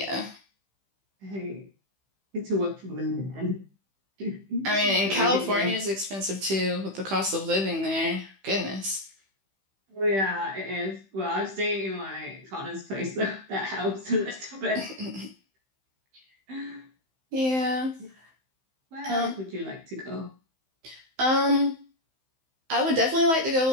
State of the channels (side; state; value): left; late; 15 ms